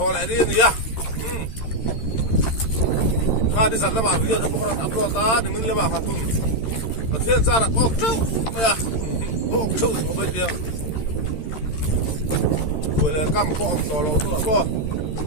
lại đi nhá đi dặn là bảo video không có upload ta thì mình là bảo học cùng và thiên gia là ốc trâu bây giờ ốc trâu không biết tiếng rồi là cam có ông to lâu nữa có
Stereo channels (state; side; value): late; right; 13 ms